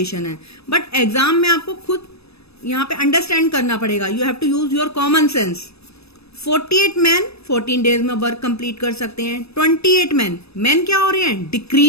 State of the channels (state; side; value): late; right; 0.78 ms